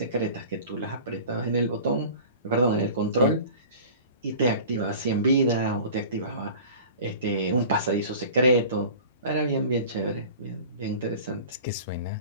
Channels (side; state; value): both; inverted; correlation -0.41